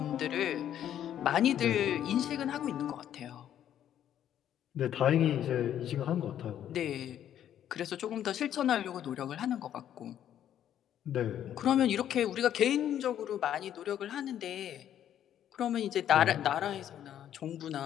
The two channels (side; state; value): right; quieter; 10.6 dB